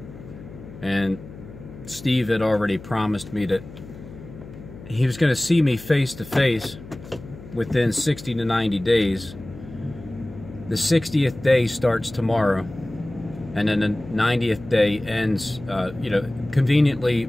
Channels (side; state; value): left; noise; hum, 16 dB below the sound